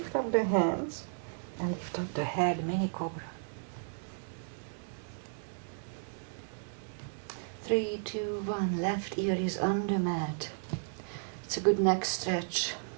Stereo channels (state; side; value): silent; left; digital silence